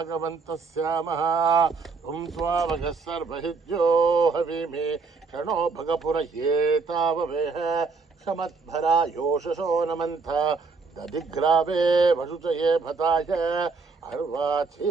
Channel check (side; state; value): left; quieter; 4.5 dB